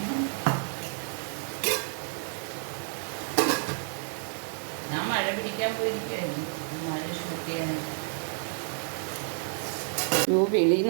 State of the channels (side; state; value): left; silent; digital silence